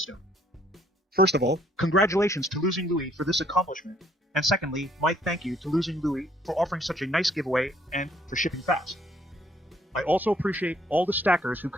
First of all, congratulations to LosingLouie for this accomplishment, and secondly, my thank you to LosingLouie for offering such a nice giveaway and for shipping fast. I also appreciate all the stackers who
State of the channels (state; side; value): normal; both; correlation 0.65